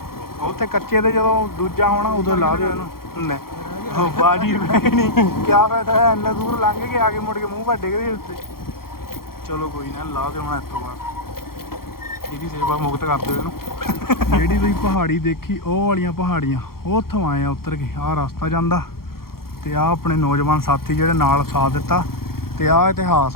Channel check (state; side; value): late; right; 0.93 ms